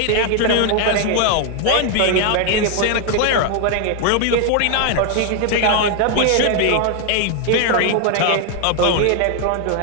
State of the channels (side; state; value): both; different; correlation 0.01